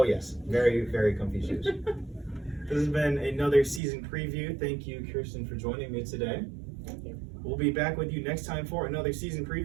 yes, very, very comfy shoes. This has been another season preview. Thank you, Kirsten, for joining me today. Thank you. We'll be back with you next time for another season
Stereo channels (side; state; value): left; drops out; at 3.8 s